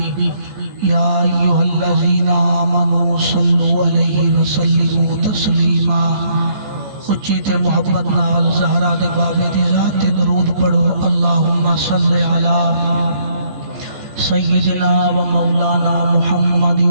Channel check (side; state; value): left; late; 14 ms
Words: یا ایہا الذین آمنوا صلوا علیہ وسلموا تسلیما اچھی تے محبت نال زہرا دے بابے دی ذات درود پڑھو اللہم صلی علی سیدنا و مولانا محمد